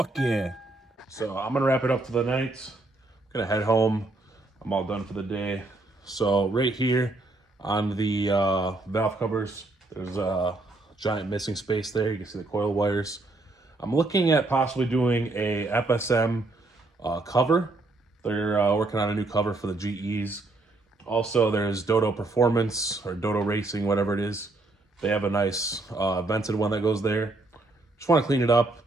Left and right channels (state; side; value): quieter; left; 3.0 dB